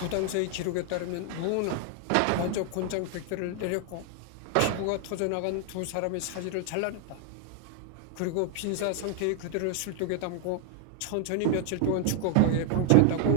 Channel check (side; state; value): both; different; correlation 0.00